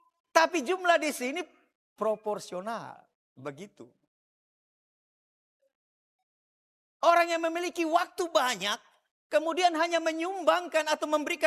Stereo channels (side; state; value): both; identical; correlation 1.00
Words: Tapi jumlah di sini proporsional, begitu. Orang yang memiliki waktu banyak, kemudian hanya menyumbangkan atau